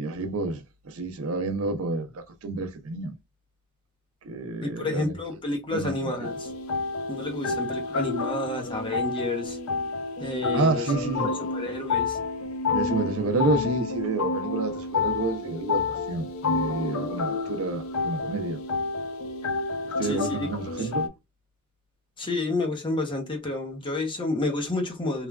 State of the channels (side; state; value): both; normal; correlation 0.06